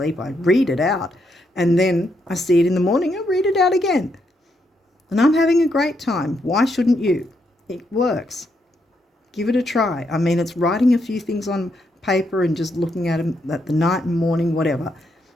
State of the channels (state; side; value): normal; both; correlation 0.78